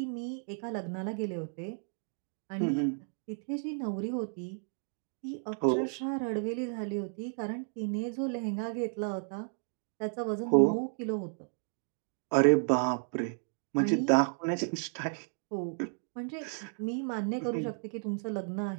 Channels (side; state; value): left; silent; 56 dB below the other